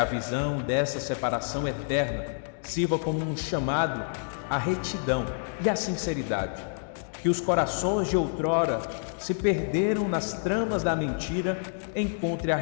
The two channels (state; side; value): silent; right; digital silence